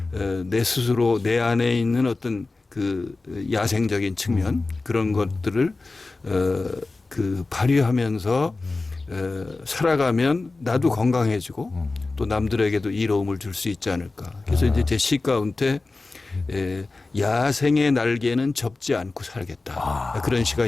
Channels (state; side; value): quieter; right; 3.5 dB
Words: 내 스스로 내 안에 있는 어떤 그 야생적인 측면 그런 것들을 그 발휘하면서 살아가면 나도 건강해지고 또 남들에게도 이로움을 줄 수 있지 않을까. 그래서 이제 제 시 가운데 야생의 날개는 접지 않고 살겠다. 그런 시가